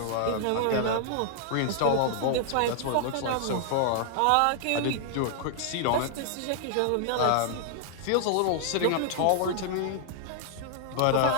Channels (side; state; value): both; different; correlation 0.00